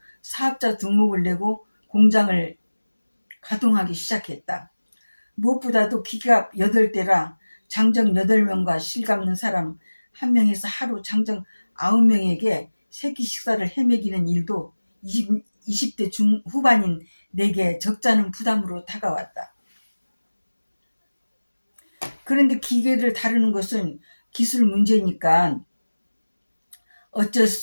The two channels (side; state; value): both; inverted; correlation -1.00